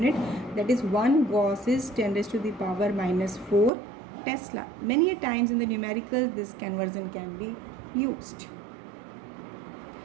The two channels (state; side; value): drops out; left; at 3.7 s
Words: that is 1 Gauss is 10 raised to the power minus 4 Tesla. Many a times in the numericals this conversion can be used.